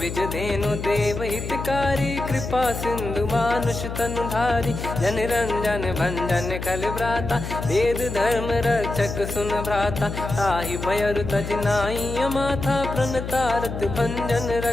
धेनु देव हितकारी, कृपा सिंधु मानुष तनुधारी, जन रंजन भंजन खल भ्राता, वेद धर्म रक्षक सुन भ्राता, ताहि भयरु तज नाई माथा, प्रणतारत भंजन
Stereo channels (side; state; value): left; noise; hum, 6 dB below the sound